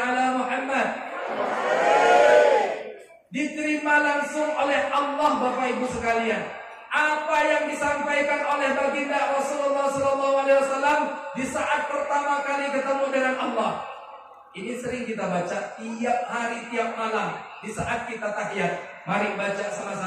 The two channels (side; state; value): both; identical; correlation 1.00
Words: Muhammad. Diterima langsung oleh Allah Bapak Ibu sekalian. Apa yang disampaikan oleh baginda Rasulullah SAW di saat pertama kali ketemu dengan Allah. Ini sering kita baca tiap hari, tiap malam di saat kita tahiyat. Mari baca